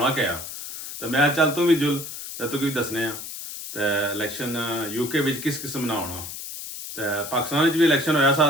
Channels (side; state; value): left; noise; hiss, 9 dB below the sound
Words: क्या। तो मैं चल तू भी जुल तो तू भी दसने आ तो इलैक्शन यूके में किस किस्म ना होना। तो पाकिस्तान भी इलैक्शन होया सा